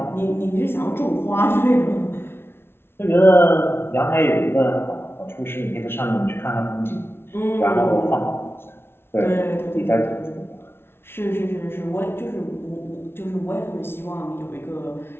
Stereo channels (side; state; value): right; late; 0.12 ms